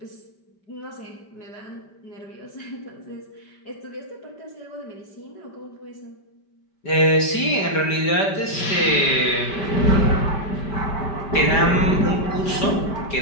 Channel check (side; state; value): right; late; 5.1 ms